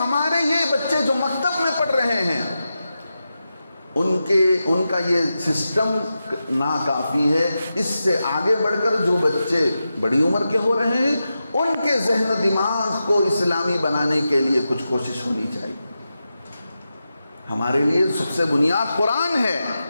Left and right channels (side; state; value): both; inverted; correlation -0.90